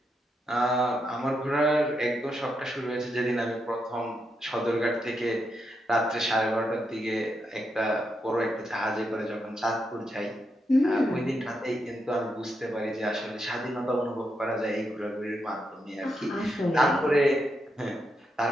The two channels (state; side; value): normal; both; correlation 0.82